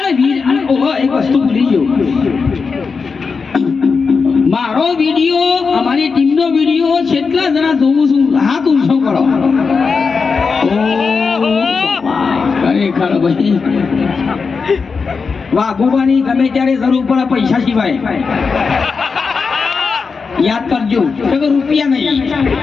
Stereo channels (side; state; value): right; quieter; 5.0 dB